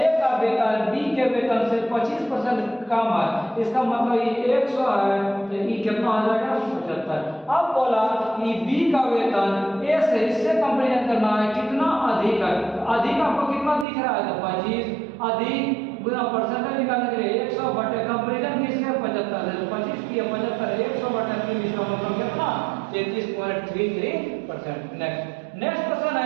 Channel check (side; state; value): left; drops out; at 13.9 s